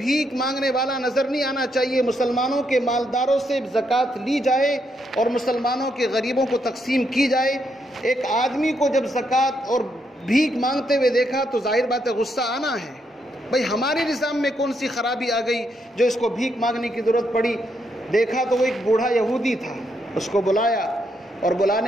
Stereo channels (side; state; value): both; normal; correlation 0.78